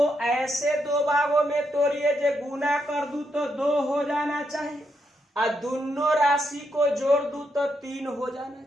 ऐसे 2 भागों में तोड़िए जो गुना कर दूं तो 2 हो जाना चाहिए, और दोनों राशि को जोड़ दूं तो 3 हो जाना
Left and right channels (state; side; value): normal; both; correlation 0.80